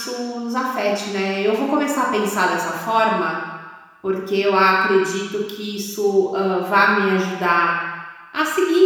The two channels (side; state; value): both; identical; correlation 1.00